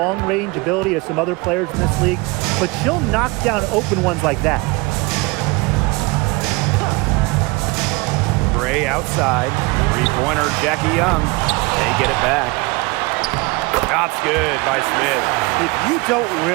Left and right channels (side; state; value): left; quieter; 25.1 dB